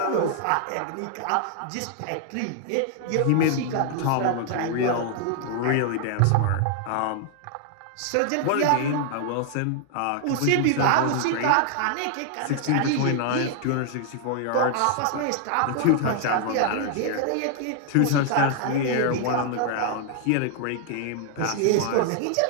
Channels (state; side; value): different; both; correlation -0.01